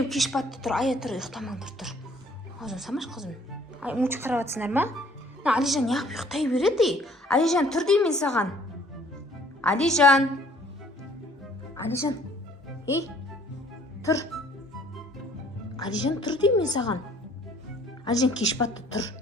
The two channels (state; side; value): normal; both; correlation 0.58